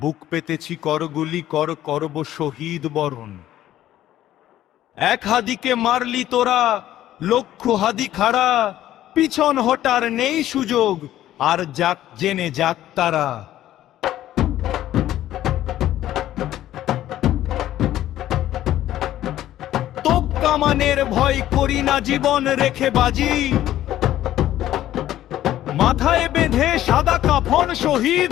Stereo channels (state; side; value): quieter; right; 13.1 dB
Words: পেতেছি করগুলি করব শহীদ বরণ। এক হাদিকে মারলি তোরা, লক্ষ হাদি খাড়া, পিছন হটার নেই সুযোগ, আর যাক জেনে যাক তারা। তোপ কামানের ভয় করি না, জীবন রেখে বাজি। মাথায় বেঁধে সাদা কাফন শহীদ